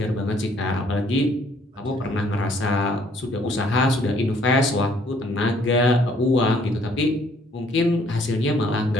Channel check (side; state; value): both; normal; correlation 0.62